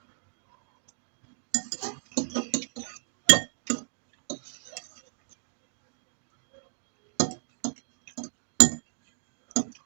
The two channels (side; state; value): left; silent; digital silence